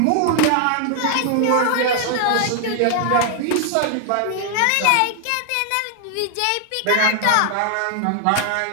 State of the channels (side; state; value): both; different; correlation 0.00